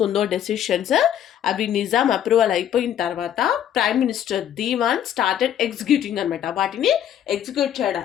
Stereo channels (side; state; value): right; quieter; 10.2 dB